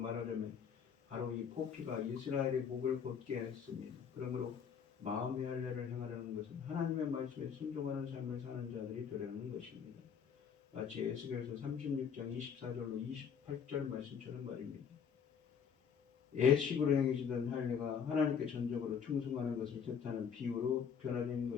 바로 이 포피가 이스라엘의 목을 곧게 했습니다. 그러므로 마음의 할례를 행하려는 것은 하나님의 말씀에 순종하는 삶을 사는 자들이 되려는 것입니다. 마치 에스겔서 36장 24절로 28절 말씀처럼 말입니다. 예식으로 행해지던 할례가 하나님께 전적으로 충성하는 것을 뜻하는 비유로 변화된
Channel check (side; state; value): right; quieter; 7.2 dB